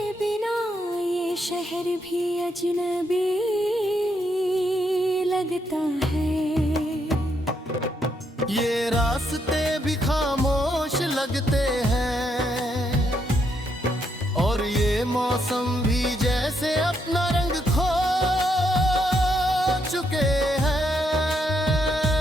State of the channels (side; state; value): both; normal; correlation 0.76